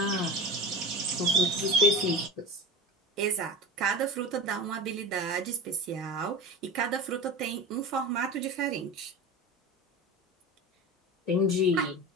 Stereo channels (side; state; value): both; normal; correlation 0.30